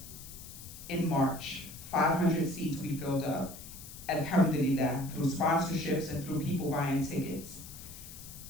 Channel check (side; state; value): left; noise; hiss, 14 dB below the sound